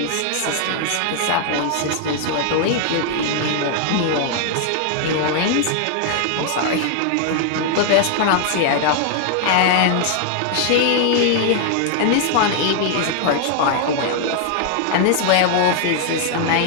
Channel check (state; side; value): different; both; correlation 0.00